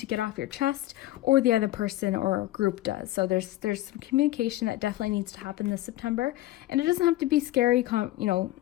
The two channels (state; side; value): quieter; right; 15.8 dB